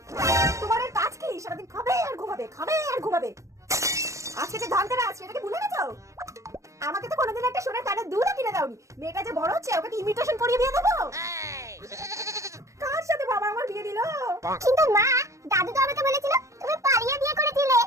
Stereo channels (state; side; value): late; left; 0.15 ms